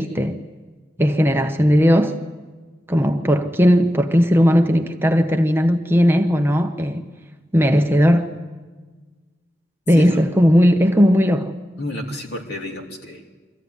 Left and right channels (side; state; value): both; normal; correlation 0.92